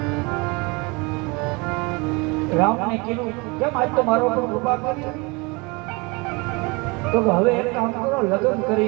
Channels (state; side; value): quieter; left; 27.4 dB